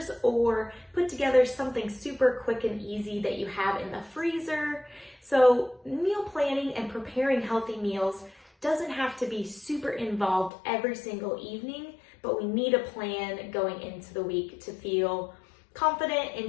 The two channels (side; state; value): right; drops out; at 10.5 s